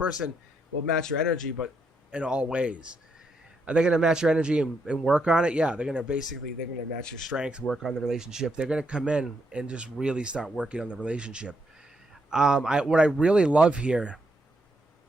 will match your energy, but in all ways. Are they going to match your energy and work on it? Yeah, they're going to match your strength, work on the relationship. They're going to come in and just really start working on the relationship. What I really love here,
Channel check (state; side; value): normal; both; correlation 0.78